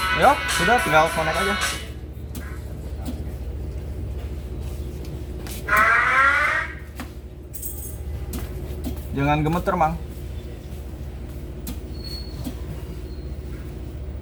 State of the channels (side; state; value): both; identical; correlation 1.00